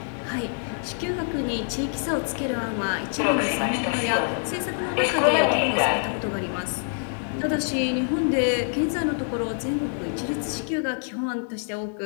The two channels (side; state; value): right; silent; digital silence